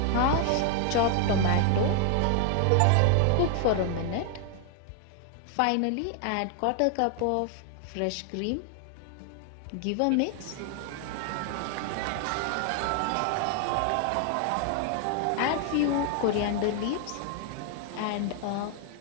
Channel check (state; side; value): different; both; correlation 0.00